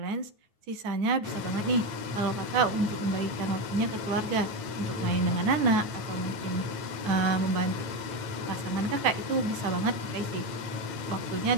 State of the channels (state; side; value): late; left; 9.4 ms